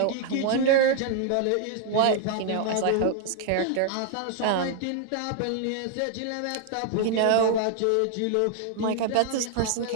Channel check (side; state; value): both; different; correlation 0.00